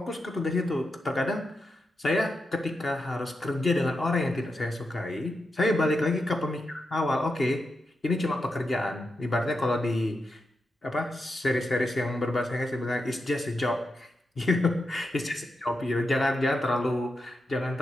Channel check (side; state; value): both; normal; correlation 0.87